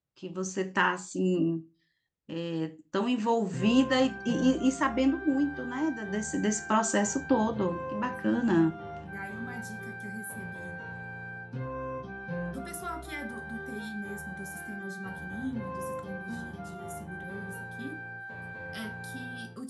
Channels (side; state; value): both; identical; correlation 1.00